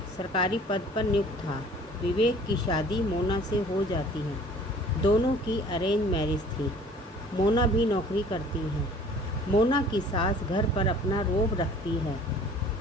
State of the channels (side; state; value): both; normal; correlation 0.51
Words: सरकारी पद पर नियुक्त था। विवेक की शादी मोना से हो जाती है। दोनों की अरेंज मैरिज थी। मोना भी नौकरी करती है। मोना की सास घर पर अपना रोब रखती है।